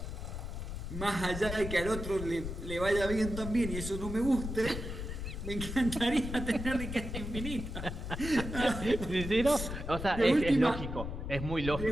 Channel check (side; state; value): left; noise; rumble, 6 dB below the sound